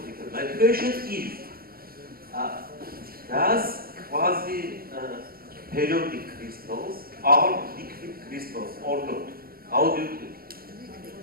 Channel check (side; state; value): left; late; 0.43 ms